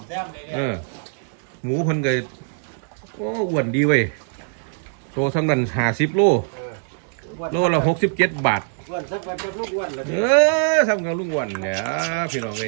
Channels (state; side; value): silent; left; digital silence